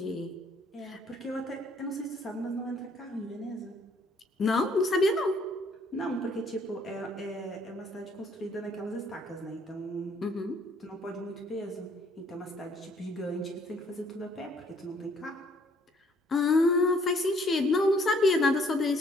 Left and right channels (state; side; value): normal; both; correlation 0.63